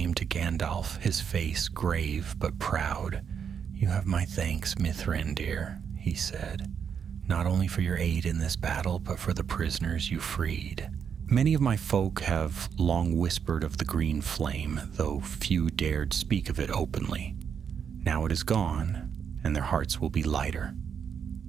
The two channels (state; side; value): quieter; left; 7.3 dB